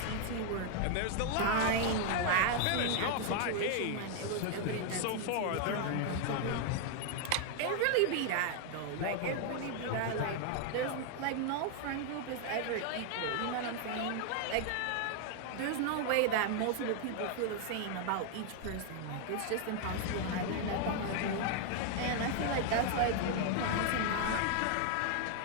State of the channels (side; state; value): both; different; correlation 0.00